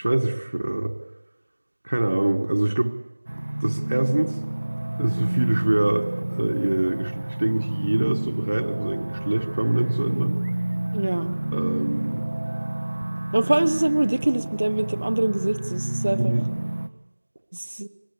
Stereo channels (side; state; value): both; inverted; correlation -1.00